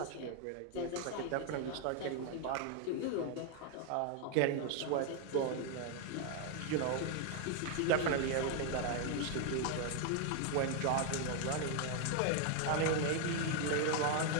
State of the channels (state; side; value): different; both; correlation 0.01